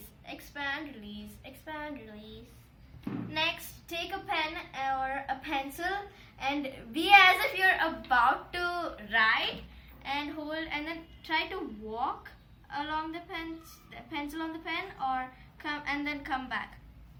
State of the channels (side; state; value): both; identical; correlation 1.00